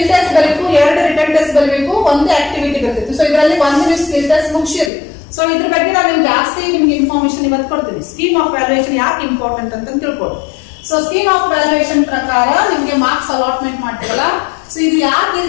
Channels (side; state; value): right; drops out; at 4.9 s